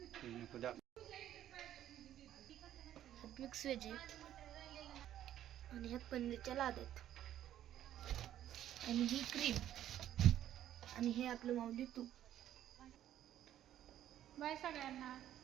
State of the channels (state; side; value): quieter; left; 11.7 dB